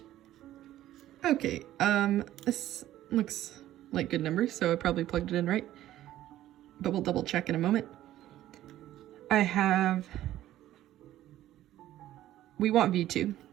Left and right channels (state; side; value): quieter; left; 13.6 dB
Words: Okay, this looks like good numbers, so I probably plugged it in right, but we'll double check in a moment. We want V2.